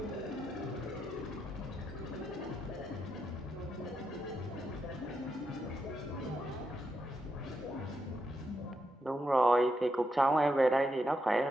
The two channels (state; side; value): normal; both; correlation 0.83